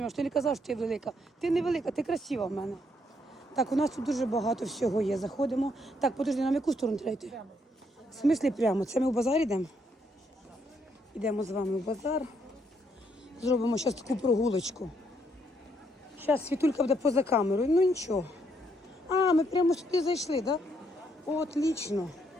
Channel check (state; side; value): normal; both; correlation 0.73